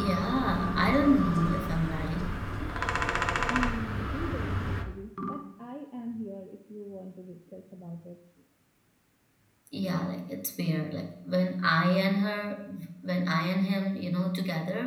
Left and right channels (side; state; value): both; identical; correlation 1.00